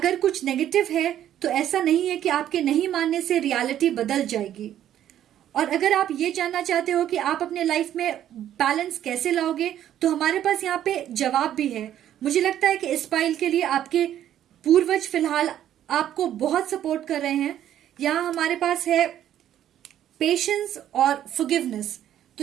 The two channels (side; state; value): left; quieter; 11.2 dB